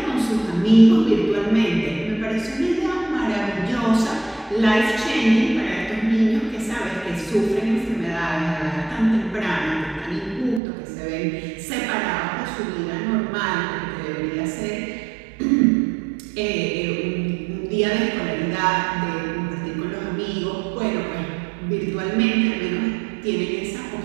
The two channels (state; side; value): drops out; left; at 10.6 s